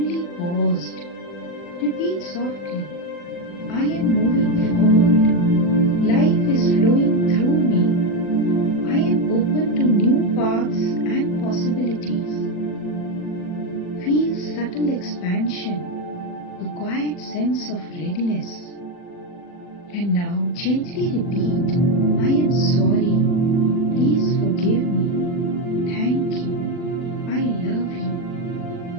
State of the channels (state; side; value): late; right; 40 ms